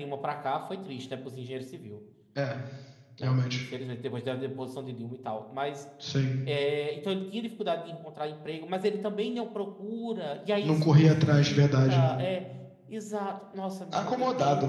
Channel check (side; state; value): both; identical; correlation 1.00